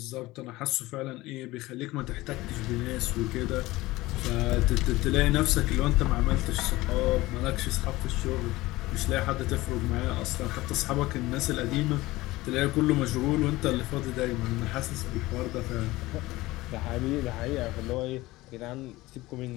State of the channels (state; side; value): quieter; right; 19.1 dB